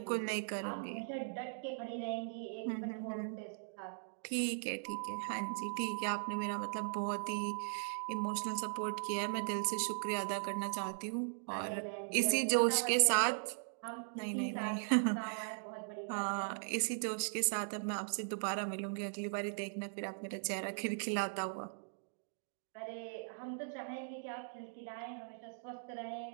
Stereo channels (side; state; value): left; silent; digital silence